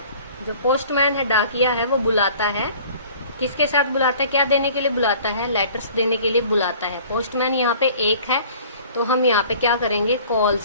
जो पोस्टमैन है, डाकिया है, वो बुलाता है, किसके साथ बुलाता है, क्या देने के लिए बुलाता है, लेटर्स देने के लिए बुलाता है। पोस्टमैन यहाँ पे एक है, तो हम यहाँ पे क्या करेंगे,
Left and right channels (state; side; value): inverted; both; correlation -0.49